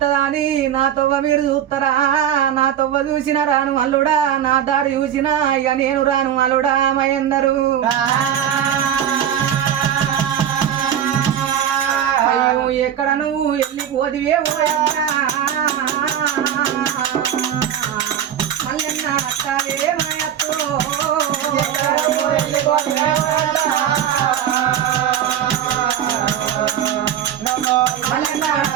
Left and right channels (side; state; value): left; quieter; 9.7 dB